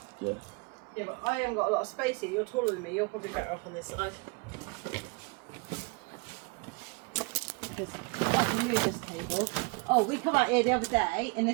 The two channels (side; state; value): left; quieter; 29.8 dB